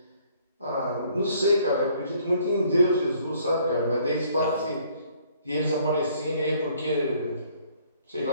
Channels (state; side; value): inverted; both; correlation -0.62